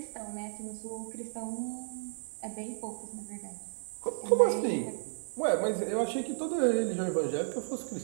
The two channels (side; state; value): left; silent; digital silence